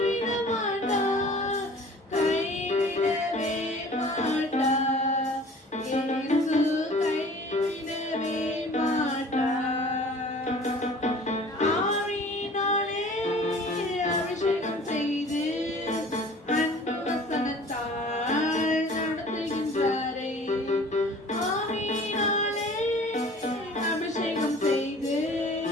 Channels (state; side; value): normal; both; correlation 0.47